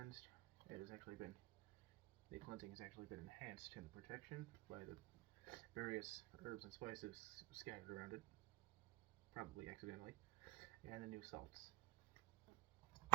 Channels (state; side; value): quieter; left; 19.0 dB